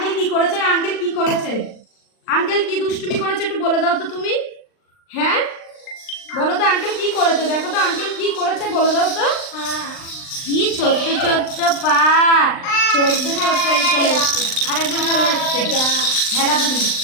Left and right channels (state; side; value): late; right; 39 ms